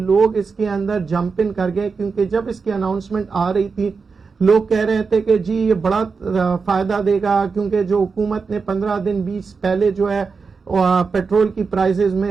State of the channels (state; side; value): quieter; left; 5.0 dB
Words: اس کے اندر جمپ ان کر گئے، کیونکہ جب اس کی اناؤنسمنٹ آ رہی تھی لوگ کہہ رہے تھے کہ جی یہ بڑا فائدہ دے گا، کیونکہ جو حکومت نے 15 دن 20 پہلے جو ہے پیٹرول کی پرائسز